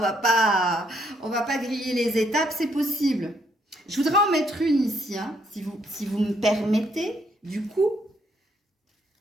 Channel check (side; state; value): both; normal; correlation 0.71